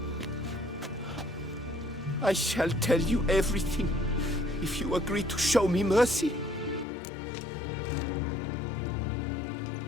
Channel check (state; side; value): drops out; right; at 6.9 s